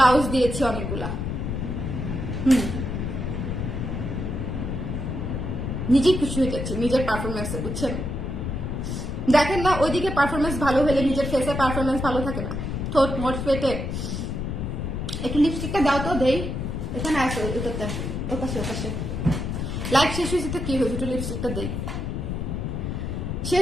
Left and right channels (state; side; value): noise; left; rumble, 3 dB below the sound